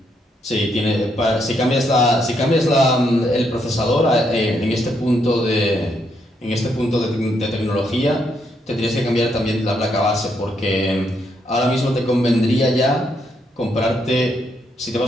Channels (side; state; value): both; normal; correlation 0.76